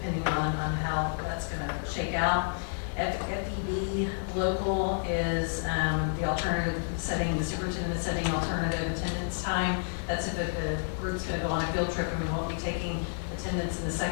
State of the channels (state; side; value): silent; right; 56 dB below the other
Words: on how that's going to shake out. FEB local is the alternative setting, the superintendent setting alternative attendance time. That's if the group's going to go on a field trip and we won't be taking attendance in the